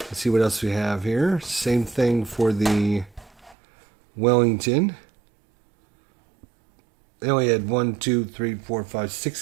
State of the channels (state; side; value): drops out; left; at 3.6 s